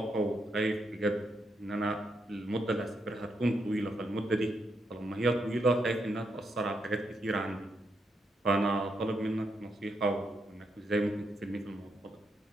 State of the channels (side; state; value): both; normal; correlation 0.80